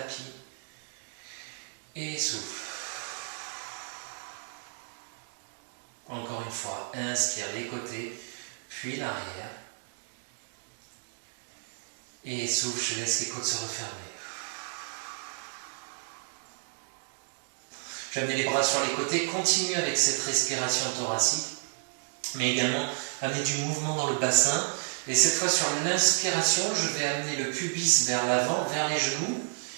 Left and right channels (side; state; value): left; silent; 57 dB below the other